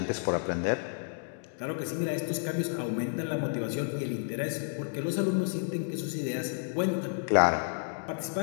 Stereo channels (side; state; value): right; silent; digital silence